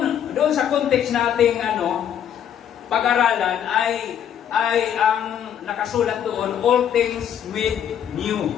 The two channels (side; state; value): right; quieter; 9.3 dB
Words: sa context nating pag-aralan ay ang nakasulat doon, all things made new.